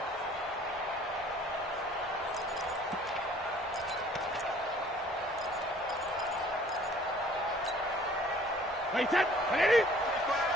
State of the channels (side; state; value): both; normal; correlation 0.54